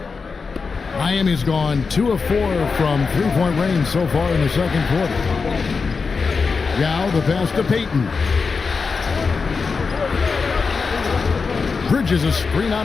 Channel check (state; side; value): quieter; right; 4.9 dB